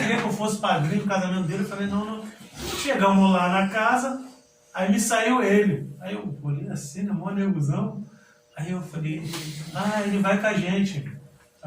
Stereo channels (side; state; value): both; identical; correlation 1.00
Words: eu fosse padrinho no casamento dele. Eu falei, não. Chegamos lá na casa, aí me saiu ele. Aí eu olhei assim, na mó negozão. Aí eu falei, ele vai com a gente.